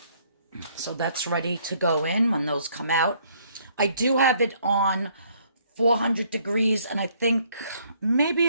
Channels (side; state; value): both; inverted; correlation -0.65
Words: So that's ready to go in when those come out. I do have it on 400 degrees, and I think maybe